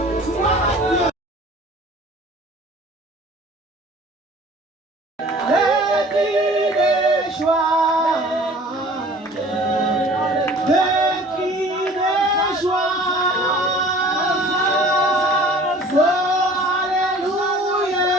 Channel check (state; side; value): normal; both; correlation 0.47